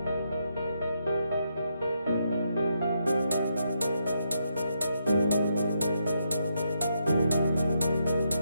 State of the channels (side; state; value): both; inverted; correlation -0.80